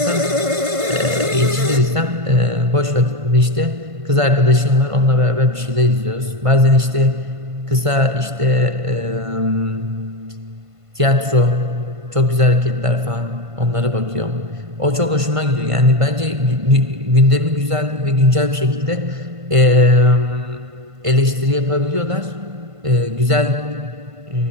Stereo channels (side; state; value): left; late; 1.5 ms